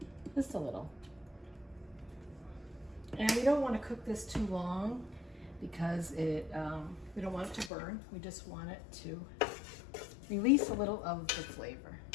Just a little. And we don't want to cook this too long because we don't want it to burn. We just want it to release a little of the flavor.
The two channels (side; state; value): right; drops out; at 7.7 s